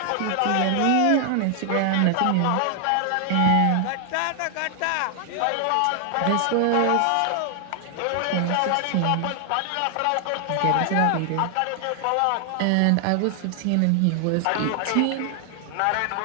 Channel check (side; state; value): both; different; correlation 0.00